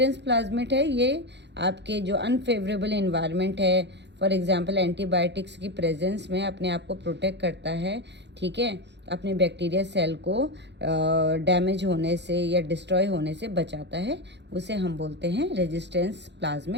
प्लाज्मिड है ये आपके जो अनफेवरेबल इन्वायरमेंट है, फॉर एग्जांपल एंटीबायोटिक्स की प्रेजेंस में अपने आप को प्रोटेक्ट करता है। ठीक है, अपने बैक्टीरिया सेल को डैमेज होने से या डिस्ट्रॉय होने से बचाता है, उसे हम बोलते हैं रेजिस्टेंस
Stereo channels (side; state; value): left; late; 0.51 ms